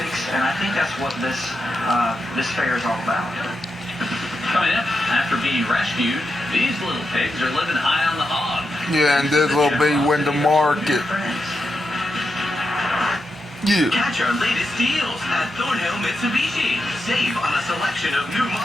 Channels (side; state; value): both; normal; correlation 0.86